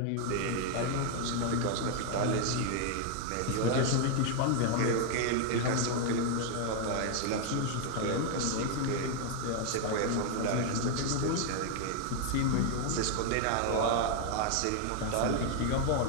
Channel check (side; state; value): both; different; correlation 0.00